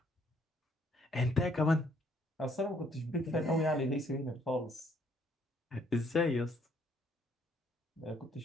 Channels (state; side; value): normal; both; correlation 0.66